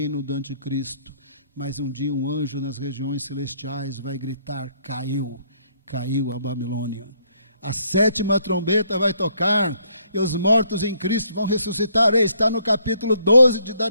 do anticristo, mas um dia um anjo nas regiões celestiais vai gritar, caiu a Babilônia. A 7ª trombeta vai tocar e os mortos em Cristo vão ressuscitar. Está no capítulo 12 de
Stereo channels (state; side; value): inverted; both; correlation -0.68